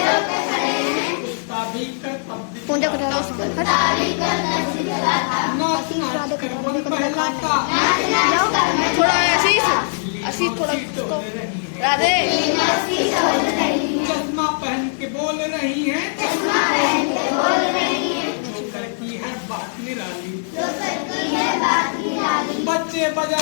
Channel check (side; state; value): right; silent; digital silence